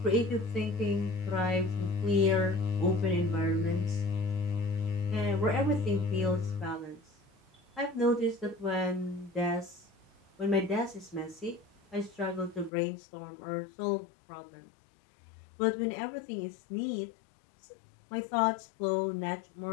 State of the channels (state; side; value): drops out; right; at 12.7 s